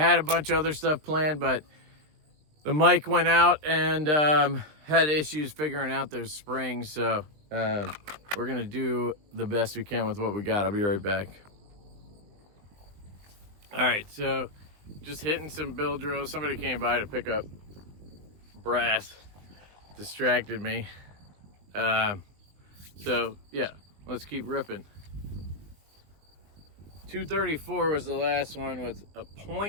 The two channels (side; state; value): left; late; 20 ms